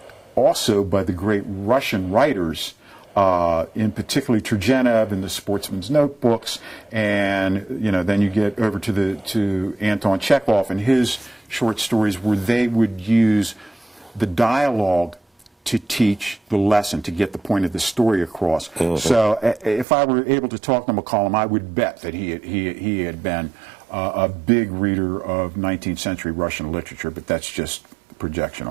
also by the great Russian writers, in particularly Turgenev in the Sportsman's Notebooks, and then you get over to Anton Chekhov and his short stories, where they would use the dialogue to teach the lesson, to get the point of the story across. So if I were able to talk to McCollum, I would bet that he had been a big reader of 19th century Russian literature, but that's just projection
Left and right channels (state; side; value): drops out; left; at 19.9 s